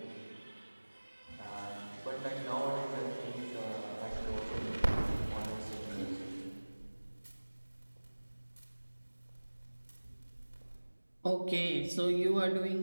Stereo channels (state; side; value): inverted; both; correlation -1.00